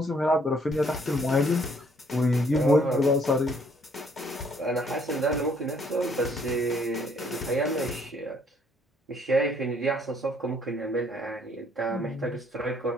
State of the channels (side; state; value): both; normal; correlation 0.64